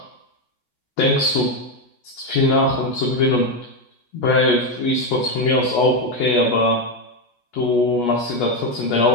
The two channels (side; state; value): right; late; 8.3 ms